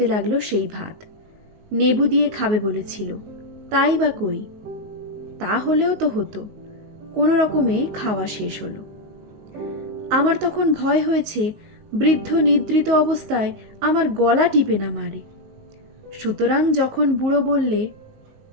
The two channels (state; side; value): late; left; 19 ms